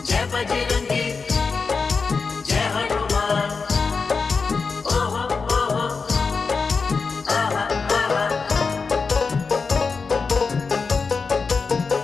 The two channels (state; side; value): quieter; right; 4.8 dB